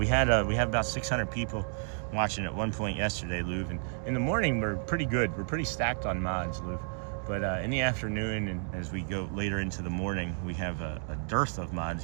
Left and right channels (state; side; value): silent; left; digital silence